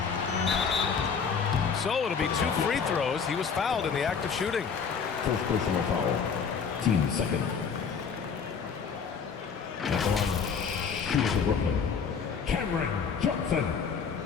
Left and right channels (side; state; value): right; quieter; 6.2 dB